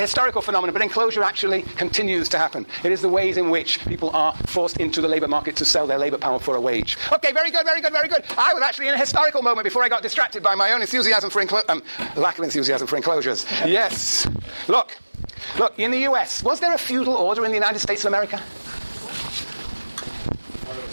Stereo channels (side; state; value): both; inverted; correlation -1.00